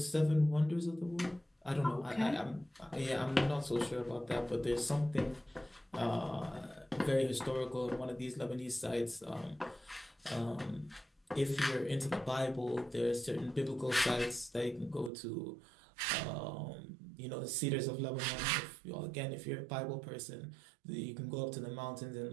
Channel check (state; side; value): drops out; left; at 15.1 s